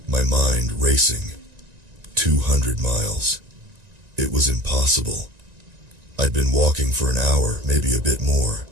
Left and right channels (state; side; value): late; left; 1.9 ms